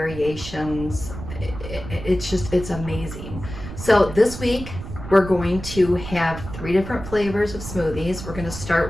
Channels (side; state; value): right; noise; rumble, 10 dB below the sound